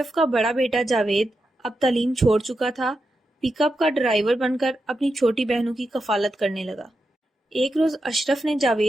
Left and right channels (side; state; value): both; normal; correlation 0.87